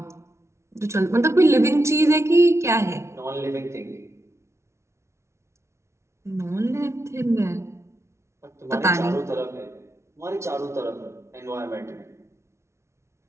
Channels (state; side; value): late; left; 0.13 ms